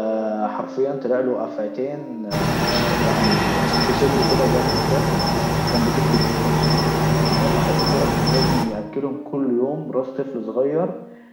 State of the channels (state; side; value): identical; both; correlation 1.00